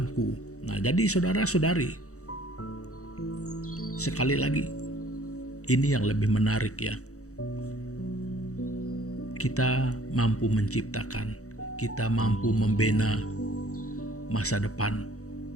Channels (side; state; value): right; late; 0.65 ms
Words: Nah, jadi saudara-saudari, sekali lagi, ini yang lebih menarik ya. Kita mampu menciptakan, kita mampu membina masa depan